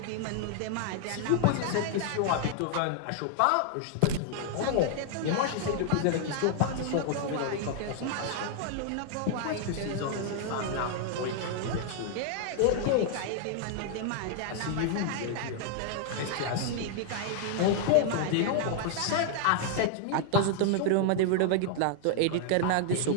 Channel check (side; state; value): both; different; correlation 0.00